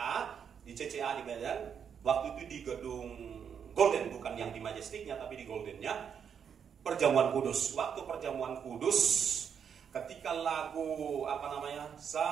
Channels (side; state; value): left; quieter; 7.5 dB